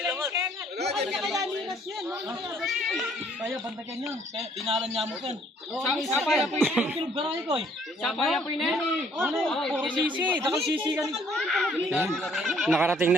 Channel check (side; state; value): both; normal; correlation 0.62